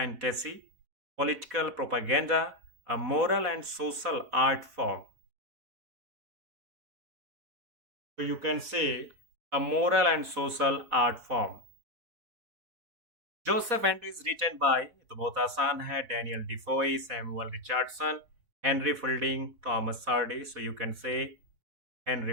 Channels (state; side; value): late; left; 4.2 ms